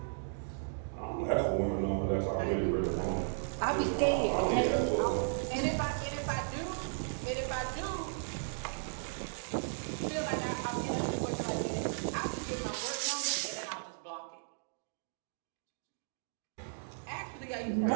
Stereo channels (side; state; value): left; silent; digital silence